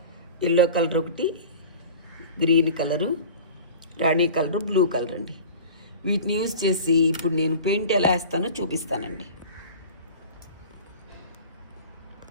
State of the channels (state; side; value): inverted; both; correlation -0.39